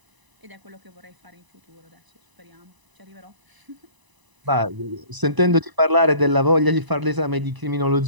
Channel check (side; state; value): left; late; 1.0 ms